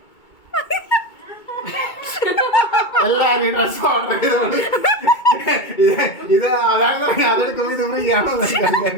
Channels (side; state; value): right; late; 2.2 ms